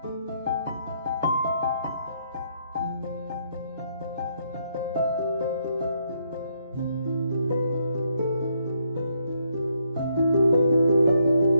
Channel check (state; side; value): inverted; both; correlation -0.73